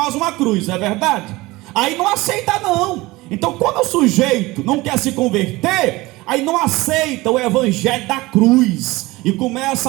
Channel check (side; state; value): left; quieter; 20.6 dB